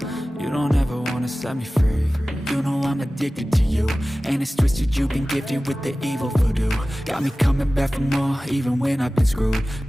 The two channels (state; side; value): normal; both; correlation 0.97